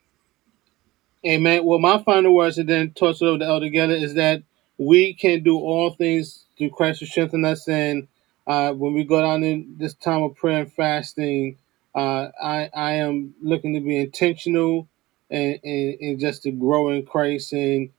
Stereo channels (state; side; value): quieter; left; 19.0 dB